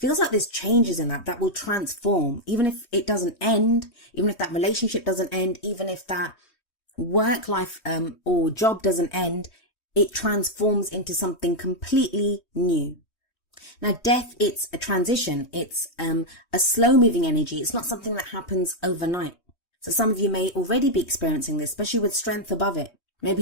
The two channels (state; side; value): late; right; 3.2 ms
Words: like there's changes in that will transform. Even if it doesn't end, even if that relationship doesn't end, even if that work life or job doesn't end, it transforms into something completely new. Now, death, it's a transition. It's a slow moving energy. It's not something that happens overnight. So some of you may already be experiencing this, especially with strength above it.